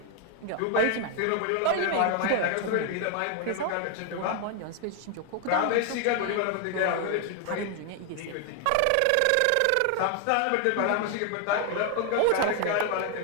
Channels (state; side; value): different; both; correlation 0.00